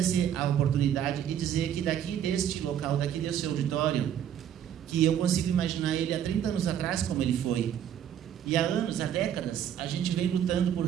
a oportunidade e dizer que daqui deste local, daqui desse auditório, que eu consigo imaginar ele há 30 anos atrás como ele foi. E há anos, há décadas, a gente vem lutando por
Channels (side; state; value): left; quieter; 9.8 dB